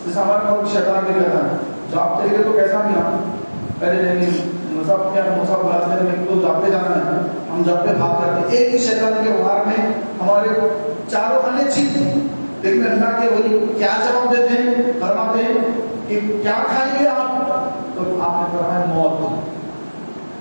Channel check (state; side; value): inverted; both; correlation -1.00